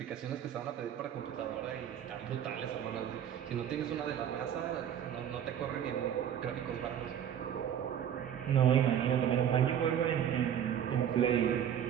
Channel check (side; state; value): left; quieter; 9.5 dB